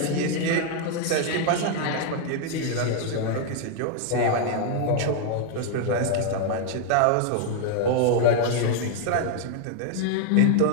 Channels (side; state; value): both; different; correlation 0.00